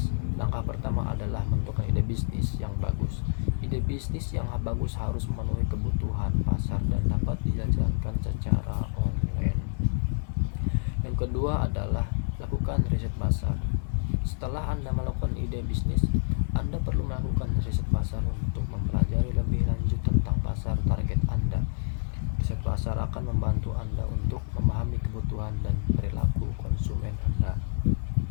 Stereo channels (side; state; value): right; silent; 59 dB below the other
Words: Langkah pertama adalah menentukan ide bisnis yang bagus. Ide bisnis yang bagus harus memenuhi kebutuhan pasar dan dapat dijalankan secara online. Yang kedua adalah lakukan riset pasar. Setelah Anda melakukan ide bisnis, Anda perlu melakukan riset pasar untuk mempelajari lebih lanjut tentang pasar target Anda. Riset pasar akan membantu Anda untuk memahami kebutuhan dan perilaku konsumen Anda.